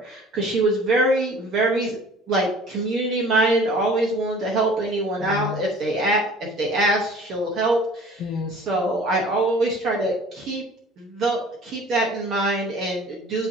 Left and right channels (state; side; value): normal; both; correlation 0.48